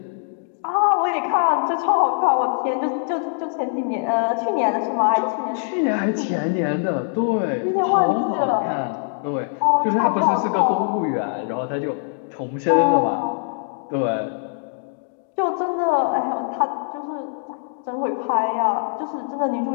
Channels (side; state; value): right; silent; digital silence